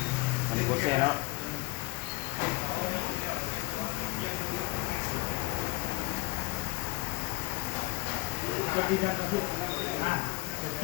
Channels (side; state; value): right; quieter; 25.5 dB